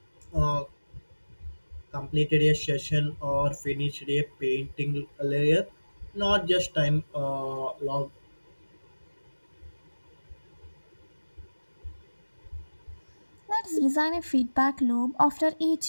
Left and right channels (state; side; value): inverted; both; correlation -1.00